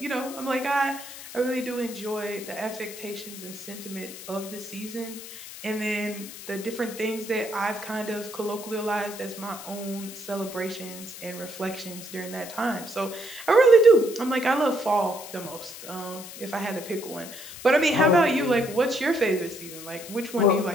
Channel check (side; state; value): left; noise; hiss, 13 dB below the sound